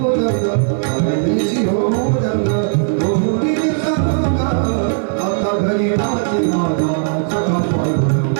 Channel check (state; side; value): silent; left; digital silence